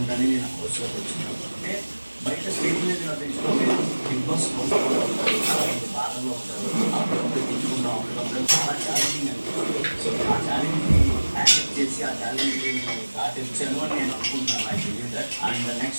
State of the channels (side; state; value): both; inverted; correlation -1.00